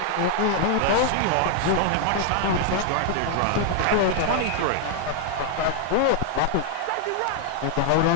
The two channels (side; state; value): both; different; correlation 0.00